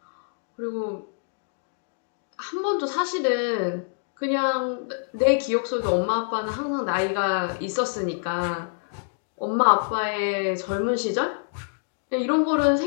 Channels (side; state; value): right; silent; digital silence